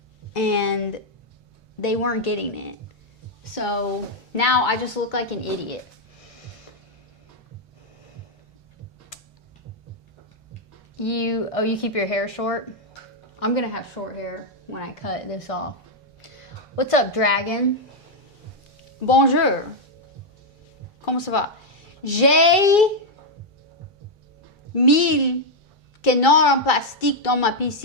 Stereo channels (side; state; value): both; normal; correlation 0.00